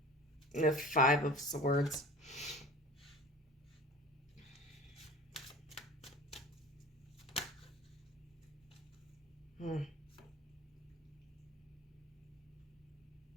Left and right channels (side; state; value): both; normal; correlation 0.40